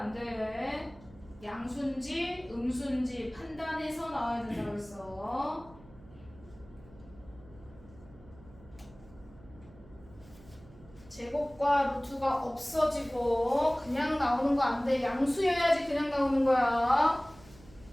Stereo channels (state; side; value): noise; right; hum, 22 dB below the sound